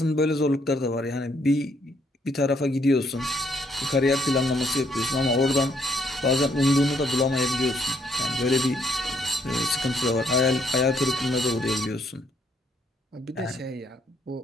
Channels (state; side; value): normal; both; correlation 0.70